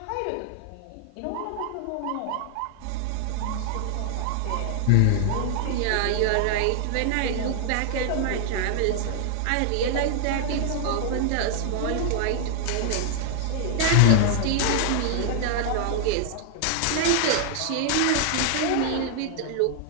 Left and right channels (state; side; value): different; both; correlation 0.00